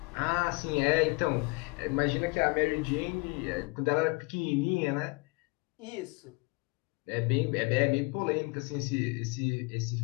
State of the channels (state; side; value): quieter; right; 27.6 dB